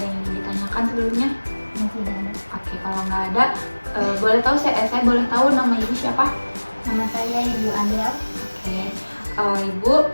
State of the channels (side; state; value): both; inverted; correlation -1.00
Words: yang ingin ditanyakan sebelumnya? Tidak ada. Oke, kalau nggak ada, boleh tahu saya boleh tahu nama Ibu siapa? Nama saya Ibu Adel. Oke, Ibu